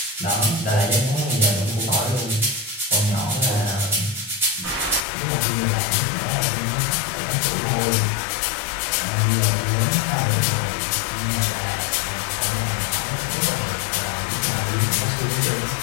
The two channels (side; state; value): right; drops out; at 5.1 s